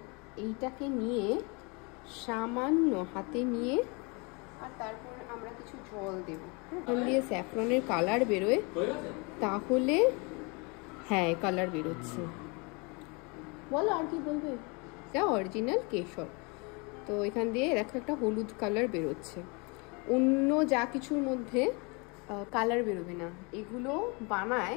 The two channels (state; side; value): quieter; right; 30.2 dB